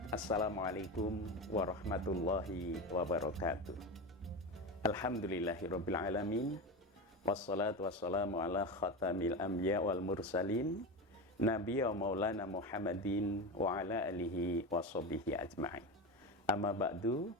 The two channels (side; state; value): both; normal; correlation 0.21